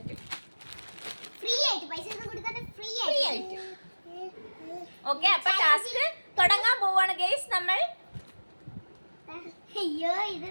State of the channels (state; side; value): inverted; both; correlation -1.00